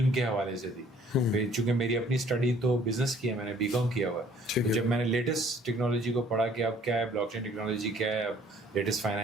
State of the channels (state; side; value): normal; both; correlation 0.58